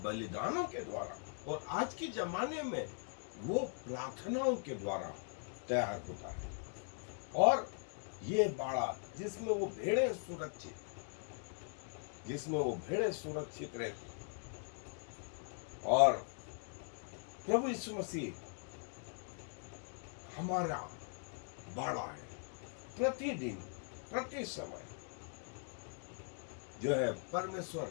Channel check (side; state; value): right; silent; 51 dB below the other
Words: बलिदानों के द्वारा, और आज के जमाने में वो प्रार्थनाओं के द्वारा तैयार होता है। और ये बाड़ा जिसमें वो भेड़ें सुरक्षित, जिसमें वो भेड़ें सुरक्षित रहती। और प्रभु यीशु मसीह हमारा बाड़ा है। प्रतिदिन, प्रति समय जो है